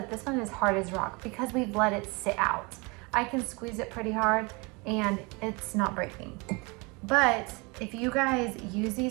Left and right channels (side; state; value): left; quieter; 28.0 dB